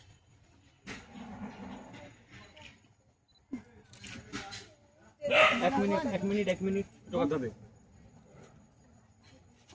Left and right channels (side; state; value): both; identical; correlation 1.00